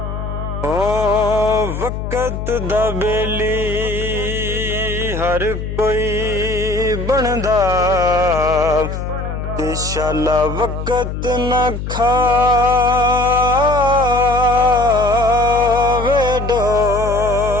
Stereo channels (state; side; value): noise; left; hum, 5 dB below the sound